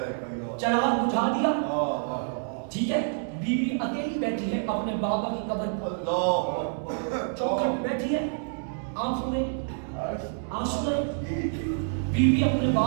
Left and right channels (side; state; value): left; silent; digital silence